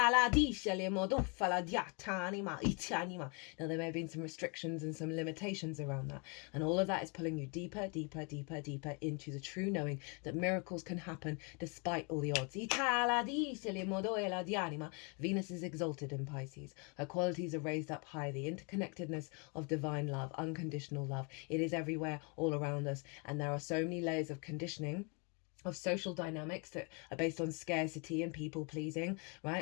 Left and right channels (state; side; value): quieter; right; 34.1 dB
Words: Now, there may have been some restrictions and some limitations around that. And all of that is pulling you deeper, deeper, deeper, deeper into the true knowing that miracles can happen despite all the odds. Venus is exalted in Pisces. Her qualities are raised up high. The interconnectedness of divine love, unconditional love. It is everywhere, all around us. And there are so many layers of conditioning, of social dynamics that are based on scarcity and people pleasing,